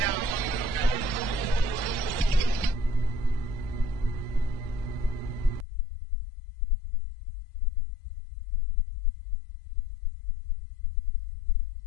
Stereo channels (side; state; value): right; drops out; at 5.7 s